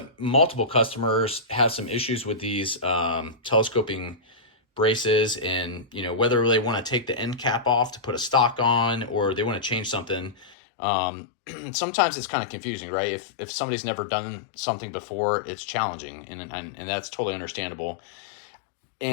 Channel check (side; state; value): right; drops out; at 10.6 s